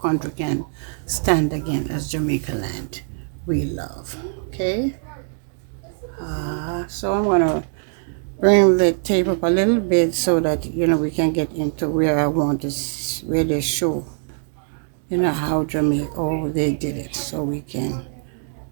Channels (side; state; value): left; silent; 64 dB below the other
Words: can stand again as Jamaica land we love. Okay. So I'm gonna bring the tape up a little bit so that we can get into where I want to, where they show how Jamaica, oh, they did it, so we can